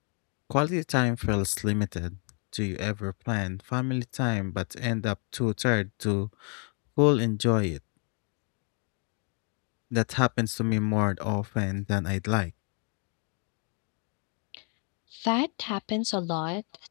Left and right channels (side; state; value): right; quieter; 38.3 dB